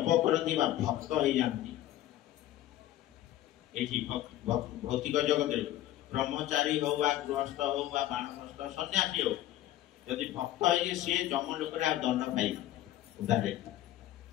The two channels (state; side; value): quieter; right; 13.6 dB